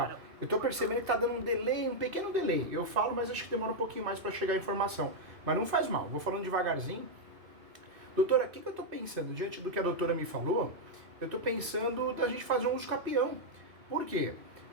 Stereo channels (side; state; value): left; late; 2.5 ms